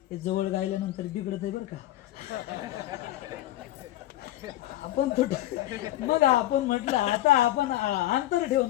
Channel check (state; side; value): quieter; right; 14.8 dB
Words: ते जवळ गायल्यानंतर बिघडत आहे बरं का. आपण मग आपण म्हटलं आता आपण अंतर ठेवून,